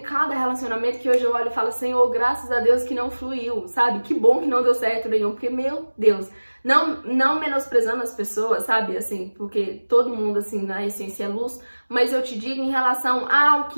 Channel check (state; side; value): inverted; both; correlation -1.00